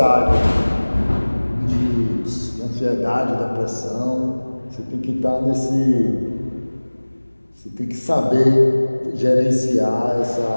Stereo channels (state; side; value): inverted; both; correlation -1.00